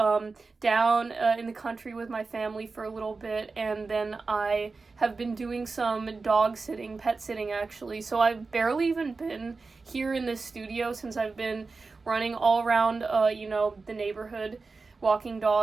down in the country with my family for a little bit, and then I have been doing some dog sitting, pet sitting actually, so I've barely even been here in this studio since I've been running all around, the neighborhood, walking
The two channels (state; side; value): quieter; left; 4.1 dB